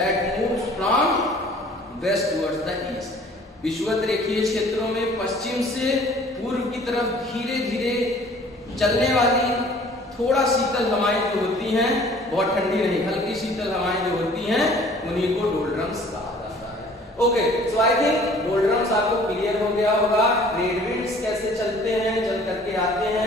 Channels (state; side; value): normal; both; correlation 0.52